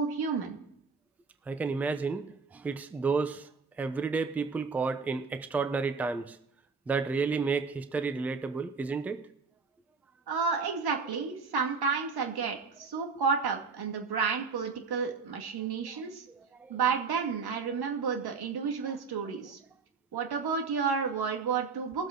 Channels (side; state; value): left; quieter; 4.9 dB